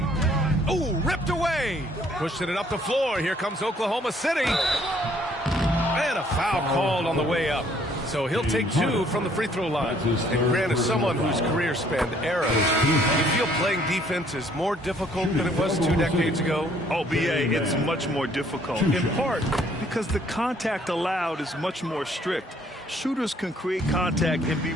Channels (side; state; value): both; normal; correlation 0.62